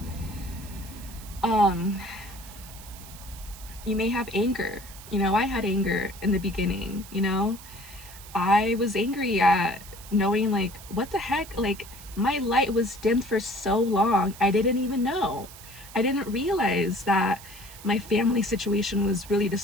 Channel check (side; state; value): right; noise; hiss, 17 dB below the sound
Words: you may have anger. You know, I had anger in the beginning, you know? I was angry at knowing, like, what the heck? Like, my light was dimmed for so long, I didn't even know. I didn't realize that my family situation was really